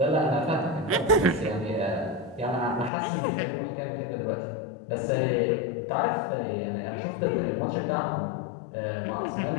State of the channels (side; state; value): right; drops out; at 2.9 s